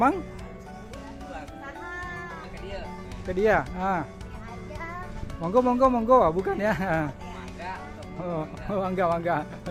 Ke dia. Ah. Monggo, monggo, monggo. Ah, bukan ya. Oh, mangga, mangga.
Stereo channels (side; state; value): both; identical; correlation 1.00